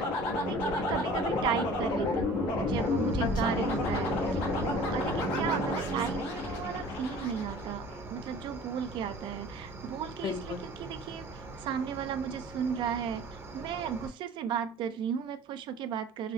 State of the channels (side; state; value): both; normal; correlation 0.45